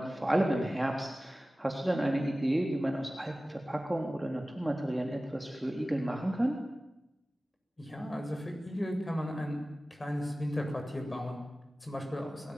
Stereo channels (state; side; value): normal; both; correlation 0.96